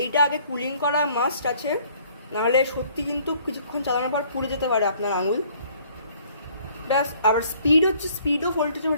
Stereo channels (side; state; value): both; inverted; correlation -0.59